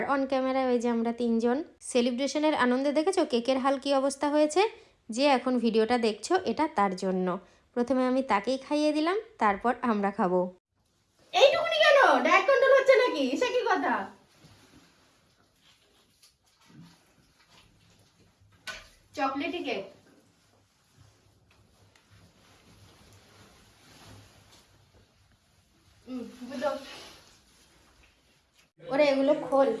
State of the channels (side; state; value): both; identical; correlation 1.00